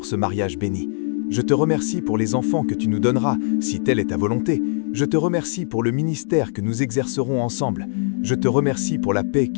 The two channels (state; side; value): silent; right; 65 dB below the other